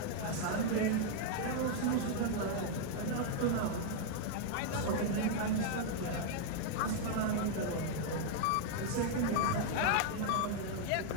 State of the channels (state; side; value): different; both; correlation 0.00